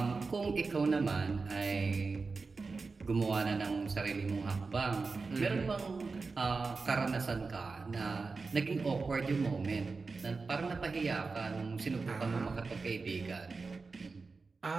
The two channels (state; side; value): quieter; left; 4.2 dB